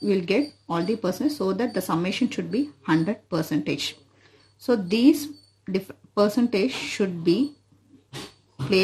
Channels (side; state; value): both; identical; correlation 1.00